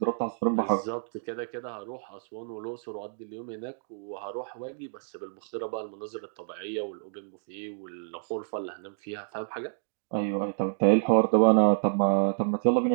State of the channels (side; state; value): left; silent; digital silence